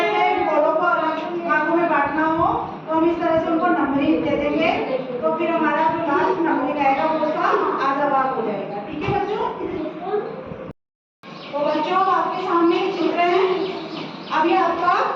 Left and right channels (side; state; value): both; identical; correlation 1.00